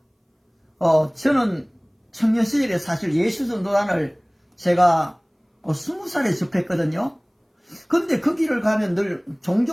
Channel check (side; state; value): both; identical; correlation 1.00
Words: 저는 청년 시절에 사실 예수전도단을 제가 20살에 접했거든요. 근데 그 길을 가면 늘